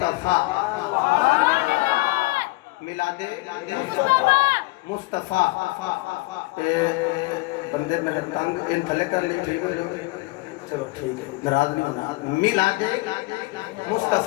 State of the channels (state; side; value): quieter; right; 22.3 dB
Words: میلاد مصطفیٰ، بندے میں تنگ ان تھلے کر لی ٹھیک ہو جائے، چلو ٹھیک ہے ناراض نہیں ہونا، میلاد